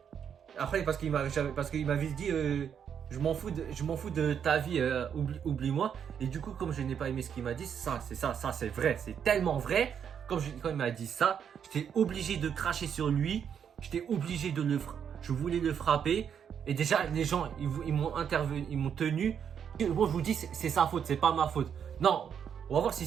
Après, parce qu'il m'avait dit je m'en fous de ta vie, oublie-moi. Et du coup, comme je n'ai pas aimé ce qu'il m'a dit, ça c'est vrai, c'est tellement vrai. Quand il m'a dit ça, j'étais obligé de cracher sur lui. J'étais obligé je voulais le frapper. Et déjà, les gens, ils m'ont intervenu, ils m'ont tenu. Bon, je vous dis, c'est sa faute, c'est pas ma faute. Non, on va voir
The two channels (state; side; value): quieter; left; 7.9 dB